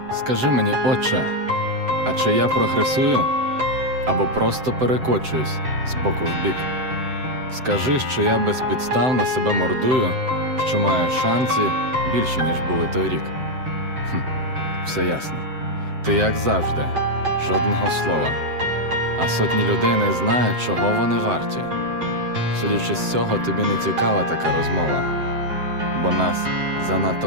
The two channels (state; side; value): late; left; 7.8 ms